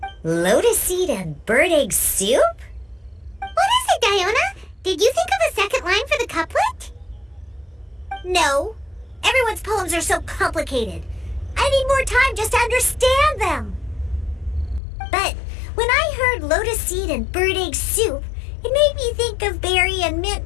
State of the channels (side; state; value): right; drops out; at 14.8 s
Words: Lotus seed and bird egg soup? What is it, Diona? Did you think of a second line for the couplet? No. Everyone's poems are so complicated. I need more time just to understand them. But when I heard lotus seed and bird egg soup, it made me think of berry and mint